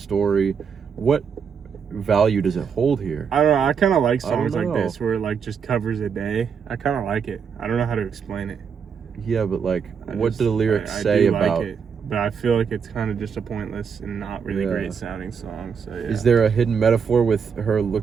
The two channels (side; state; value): left; quieter; 6.6 dB